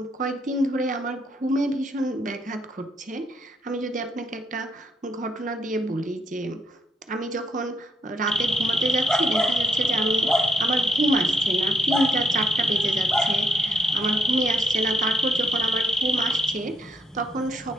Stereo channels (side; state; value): both; normal; correlation 0.72